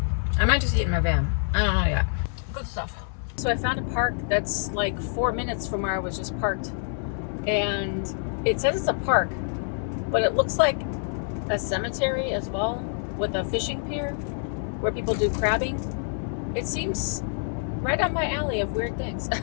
I might just eat in my van. I don't know yet. Good stuff. So I found a park that's like 4 minutes from where I was just parked. And it says it's a park, but it looks like a cemetery as well with a fishing pier where people do crabbing. It seems right on my alley of weird things.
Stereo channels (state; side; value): silent; right; 61 dB below the other